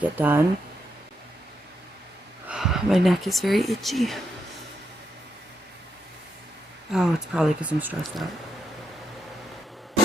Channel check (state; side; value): normal; both; correlation 0.82